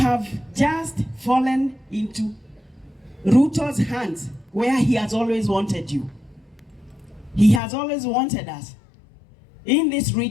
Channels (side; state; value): right; drops out; at 7.6 s